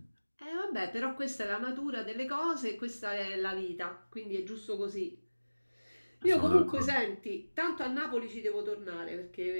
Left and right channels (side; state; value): both; inverted; correlation -1.00